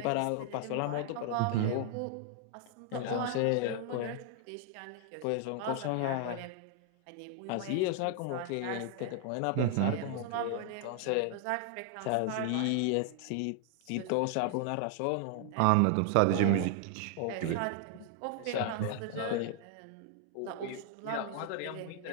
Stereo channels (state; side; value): different; both; correlation 0.00